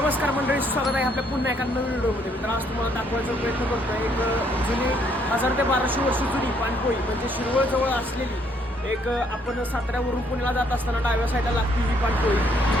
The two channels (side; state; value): both; normal; correlation 0.68